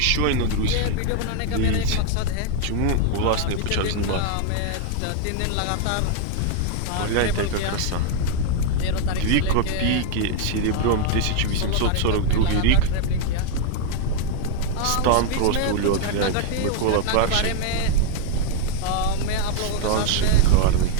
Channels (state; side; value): different; both; correlation 0.00